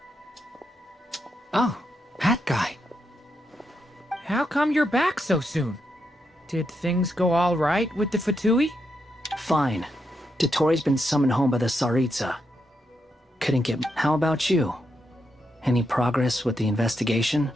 Oh, that guy. How come you're back so soon? Did things go all right with the Fatui? Fine. Dottoro's been summoned home by the Tsaritsa. Couldn't get... How about you? Any progress with the investigation?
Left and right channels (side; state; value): both; normal; correlation 0.82